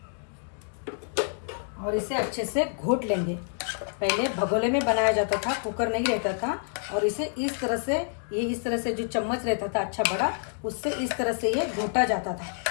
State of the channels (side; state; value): right; silent; digital silence